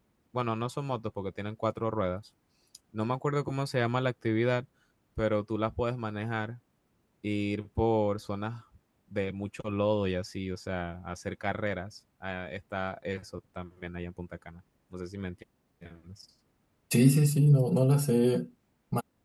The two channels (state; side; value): identical; both; correlation 1.00